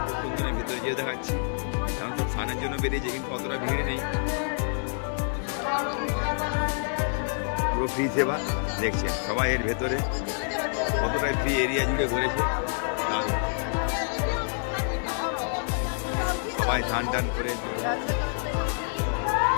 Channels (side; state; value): right; silent; digital silence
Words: খুব সুন্দর, আমি ভেতরে যেয়ে দেখাচ্ছি। এখন সব স্নানের জন্য বেরিয়েছে, কিন্তু অতটা ভিড় নেই, পুরো ফ্রি সেবা। দেখছেন সবাই এর ভেতরে কতটাই ফ্রি এরিয়া জুড়ে ঘুরেছে, দারুণ। সবাই স্নান টান করে